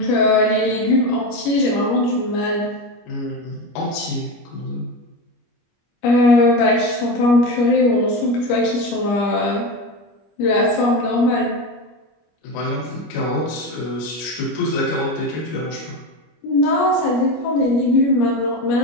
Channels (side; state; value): right; late; 25 ms